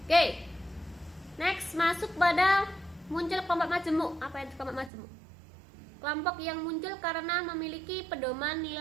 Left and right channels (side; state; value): left; drops out; at 4.9 s